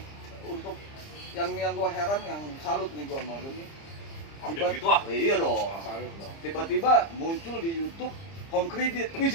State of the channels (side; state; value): right; late; 30 ms